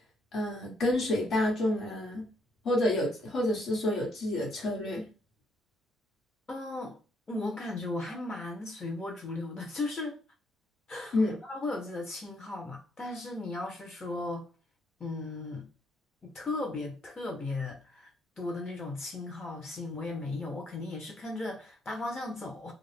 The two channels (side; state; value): both; normal; correlation 0.72